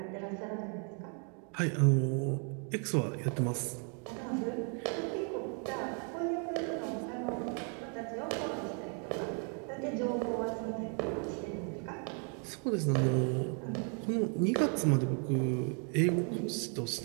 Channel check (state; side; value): quieter; left; 40.0 dB